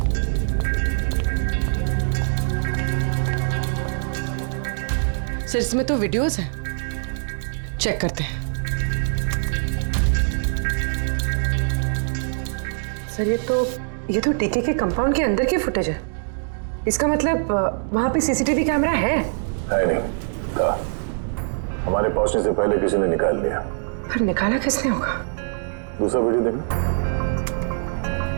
सर इसमें तो वीडियोस हैं, चेक करते हैं। सर ये तो डीके के कंपाउंड के अंदर की फुटेज है। इसका मतलब वहां पे सीसीटीवी कैमरा है नहीं था। हमारे पहुंचने से पहले किसी ने निकाल लिया। पर निकाला किसने होगा? दूसरा वीडियो देखना।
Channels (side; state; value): left; silent; digital silence